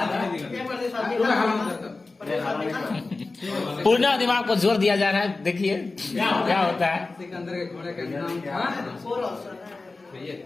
पूर्ण दिमाग को जोर दिया जा रहा है, देखिए क्या होता है। सिकंदर के घोड़े का नाम था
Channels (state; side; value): quieter; right; 3.6 dB